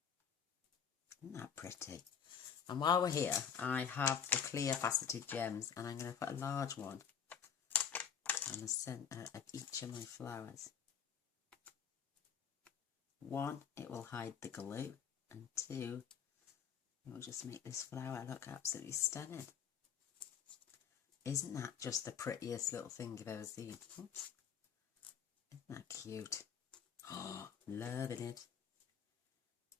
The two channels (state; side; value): quieter; right; 7.8 dB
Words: Isn't that pretty? And while we're here, I have the clear faceted gems, and I'm going to put a large one on the centre of each of my flowers. One, it will hide the glue, and two, it will just make this flower look absolutely stunning. Isn't that just the prettiest little thing you've ever seen? Oops. Isn't that cute? Oh, loving it.